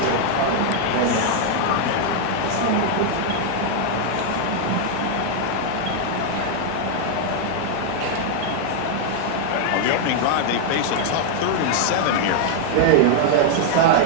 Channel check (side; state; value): both; different; correlation 0.00